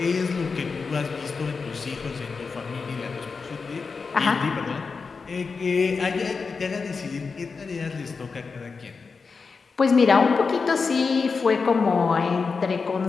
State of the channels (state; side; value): quieter; right; 4.8 dB